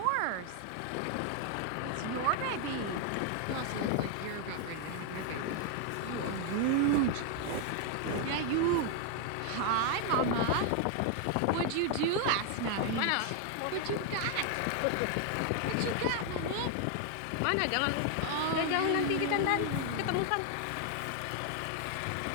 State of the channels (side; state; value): both; different; correlation 0.00